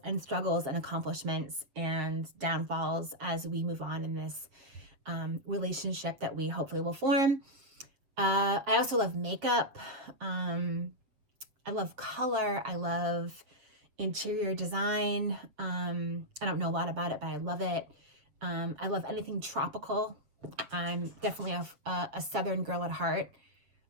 and struggles and accomplishments and downfalls as we move on in this relationship that we hopefully will form. I also love makeup. I love color. I love interior design. I don't know a lot about it, but I love it. I love anything tropical. I'm definitely a Southern girl at heart.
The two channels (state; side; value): late; left; 7.6 ms